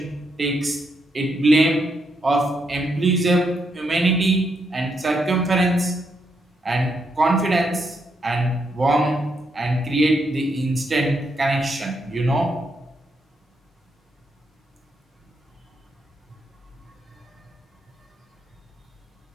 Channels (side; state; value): both; normal; correlation 0.79